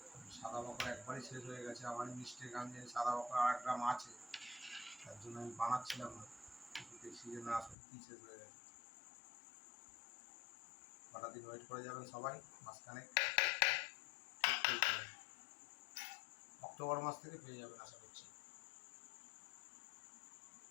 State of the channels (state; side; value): drops out; right; at 7.8 s